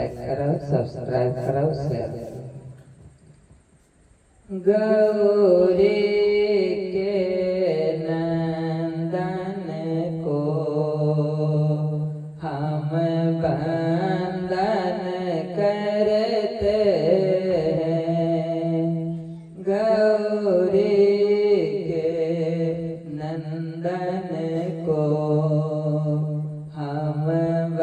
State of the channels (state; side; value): identical; both; correlation 1.00